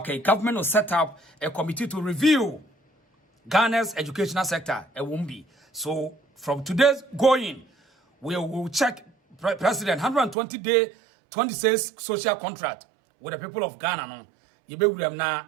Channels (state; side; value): drops out; left; at 10.4 s